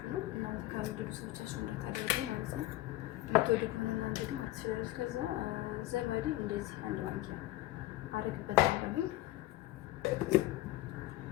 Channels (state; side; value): quieter; right; 16.4 dB